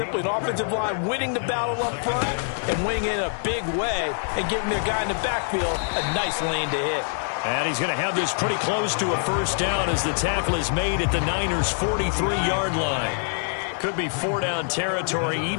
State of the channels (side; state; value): right; silent; digital silence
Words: an offensive line winning the battle up front and winning it in a big way and giving their guy in the backfield a nice lane to hit. And he's going to have this pretty close to a first down as the tackle is made at the Niners' 43-yard line. Could be 4-down territory